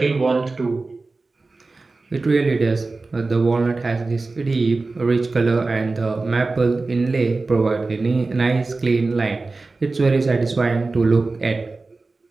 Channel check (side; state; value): left; quieter; 3.6 dB